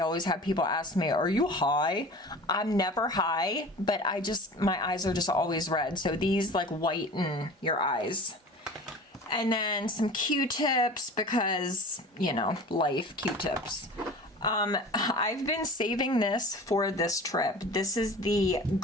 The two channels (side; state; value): both; normal; correlation 0.39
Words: have people ask me, are you high? I'm never high, but my eyes are just always red. So these like whiten your eyes. And then some Q-tips because, you know, life, Q-tips. I've been saving this for this trip. This is the